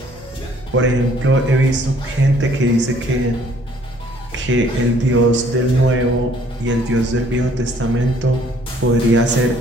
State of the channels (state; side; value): noise; right; hum, 24 dB below the sound